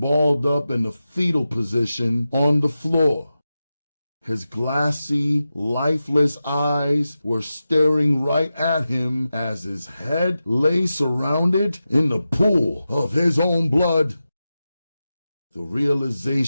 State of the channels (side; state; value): both; inverted; correlation -0.92